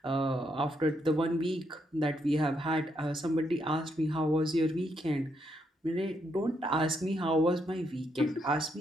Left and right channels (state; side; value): normal; both; correlation 0.77